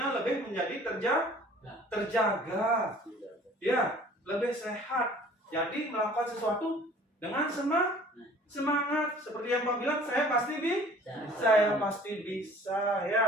lebih menjadi terjaga. Ya, lebih sehat. Jadi melakukan sesuatu dengan semangat. Seperti yang Pak bilang, saya pasti bisa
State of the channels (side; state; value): both; normal; correlation 0.50